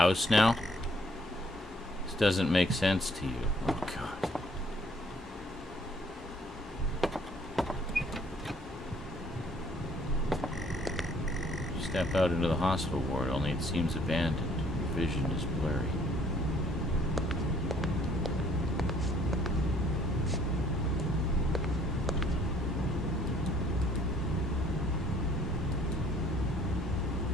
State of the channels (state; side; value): normal; both; correlation 0.61